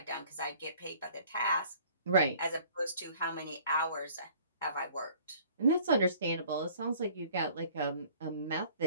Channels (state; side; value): inverted; both; correlation -0.53